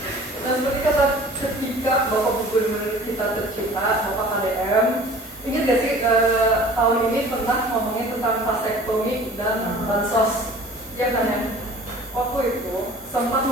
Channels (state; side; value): normal; both; correlation 0.45